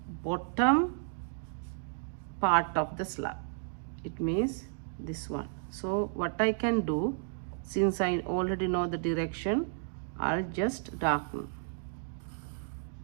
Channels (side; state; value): left; silent; digital silence